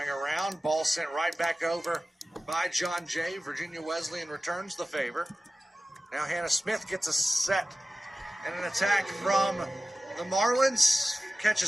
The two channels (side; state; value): both; normal; correlation 0.95